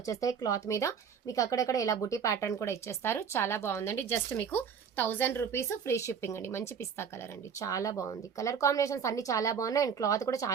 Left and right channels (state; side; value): quieter; left; 6.9 dB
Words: క్లాత్ మీద. మీకు అక్కడక్కడ ఇలా బుటీ ప్యాటర్న్ కూడా ఇచ్చేస్తారు. చాలా బాగుందండి. జస్ట్ మీకు 1000 రూపీస్, ఫ్రీ షిప్పింగ్ అండి. మంచి పిస్తా కలర్ అండి, చాలా బాగుంది. కలర్ కాంబినేషన్స్ అన్ని చాలా బాగున్నాయి. అండ్ క్లాత్ కూడా